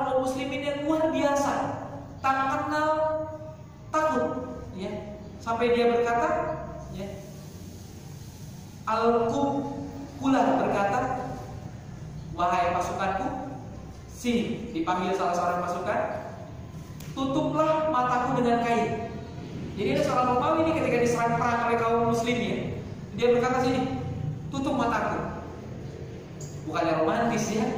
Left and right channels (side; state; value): both; identical; correlation 1.00